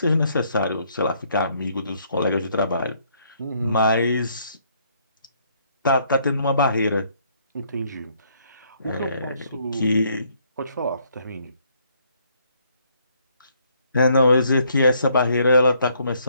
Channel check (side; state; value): both; inverted; correlation -0.68